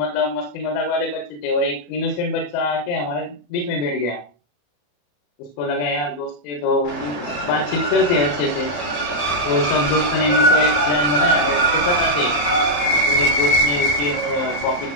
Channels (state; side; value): late; right; 34 ms